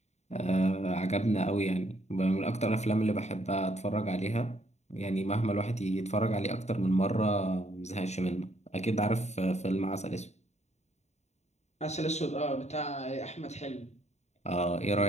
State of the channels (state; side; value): late; right; 0.32 ms